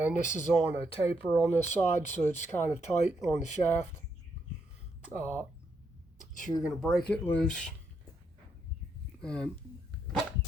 this is on a taper on this side, so it's kind of tight on the shaft. So you're going to break it loose and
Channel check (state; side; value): normal; both; correlation 0.77